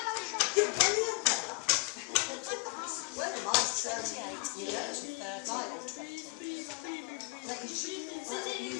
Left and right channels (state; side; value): quieter; right; 29.3 dB